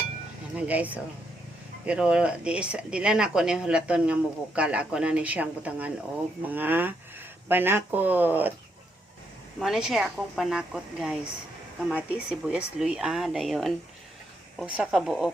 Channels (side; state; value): both; normal; correlation 0.78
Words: Yan guys, oh. Pero di lang ako ni hulaton nga mubukal. Ako na ni siyang butangan og mga panakot. Mo na siya akong panakot guys. Kamati, sibuyas, luya, dayon. Usa ka buok